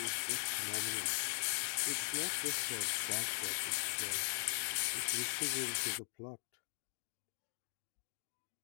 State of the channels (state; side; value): silent; right; digital silence